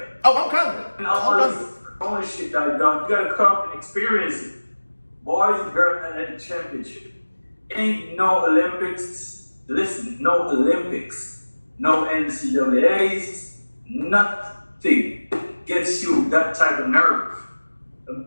Oh, I'm coming. And all this ownership that I've done, you gotta come and experience it. Boys and girls and the championship. Ain't no Olympics. Listen, no Olympics, no NCAAs, nothing gets you that type of nerve. I'm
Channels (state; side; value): inverted; both; correlation -1.00